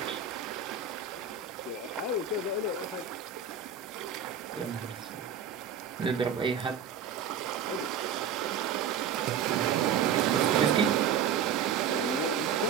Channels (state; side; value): quieter; left; 7.5 dB